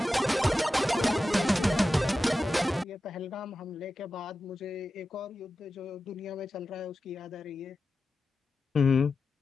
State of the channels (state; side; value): normal; both; correlation 0.93